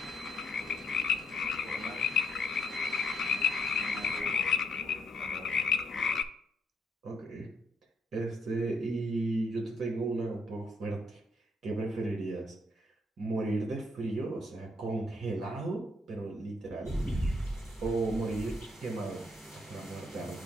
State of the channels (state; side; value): normal; both; correlation 0.71